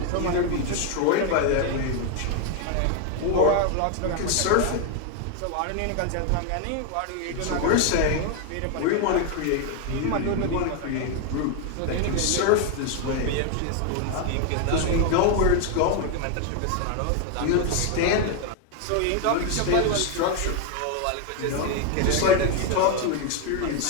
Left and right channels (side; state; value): both; different; correlation 0.01